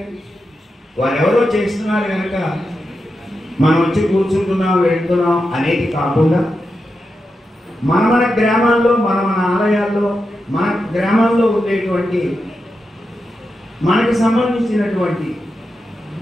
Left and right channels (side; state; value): both; normal; correlation 0.88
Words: వారెవరో చేస్తున్నారు కనుక మనం వచ్చి కూర్చుంటున్నాం, వెళ్తున్నాం అనేది కాకుండా మన గ్రామాల్లో, మన ఆలయాల్లో, మన గ్రామాల్లో ఉండేటువంటి మనకు సంబంధించినటువంటి